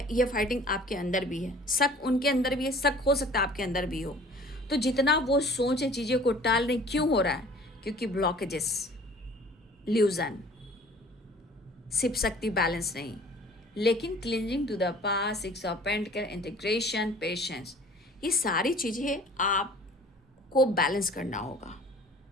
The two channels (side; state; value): both; normal; correlation 0.50